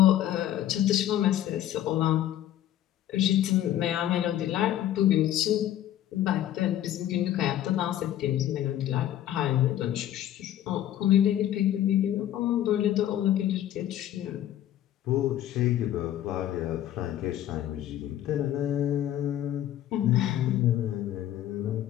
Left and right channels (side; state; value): right; quieter; 12.1 dB